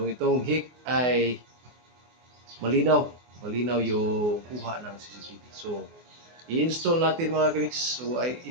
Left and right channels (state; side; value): late; left; 24 ms